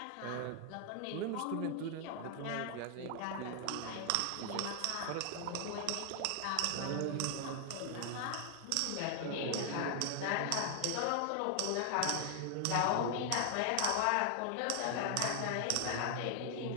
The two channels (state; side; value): different; both; correlation 0.00